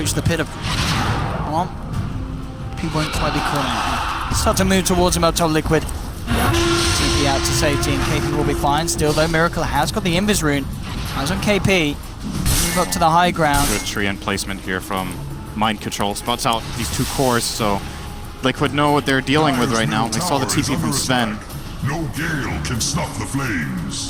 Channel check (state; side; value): identical; both; correlation 1.00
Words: the pit of. Well, he won't quite be caught out. Start to move towards him up top. Liquid. TP out to safety and KP will be fine. Still though, Miracle has got the Invis rune. Eyes on KP. Move up to the high ground. Good tree and placement here from Mind Control. Spots out these 2 cores, so Liquid know what they're dealing with right now. We saw the TP from Sven. No gale can stop the